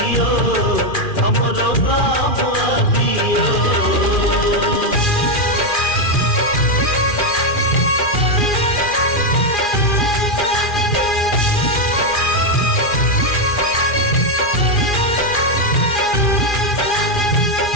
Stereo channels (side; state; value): right; late; 2.4 ms